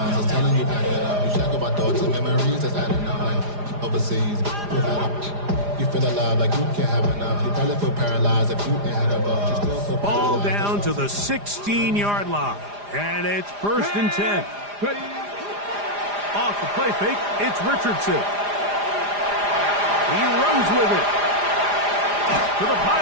It's telling you back it up. You check about thoughts and memories that's adding up. Like overseas. You feel alive like you can't have enough. You probably feel paralyzed if you ain't had a buzz. You still feel ball down to the 16-yard line. And it's first and 10. Off the play fake, it's Richardson. He runs with it. To the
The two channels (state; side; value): late; left; 4.9 ms